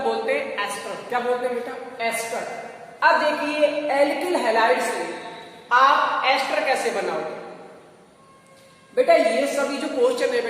हैं एस्टर। क्या बोलते हैं बेटा, एस्टर। अब देखिए एल्किल हैलाइड से आप एस्टर कैसे बनाओगे बेटा। ये सभी जो क्वेश्चन है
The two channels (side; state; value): both; identical; correlation 1.00